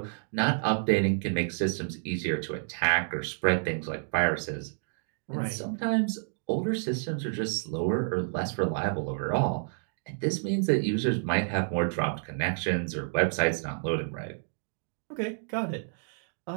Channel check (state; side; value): silent; left; digital silence